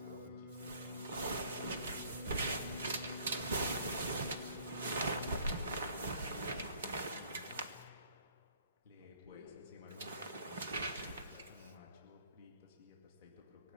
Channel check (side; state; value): both; inverted; correlation -0.58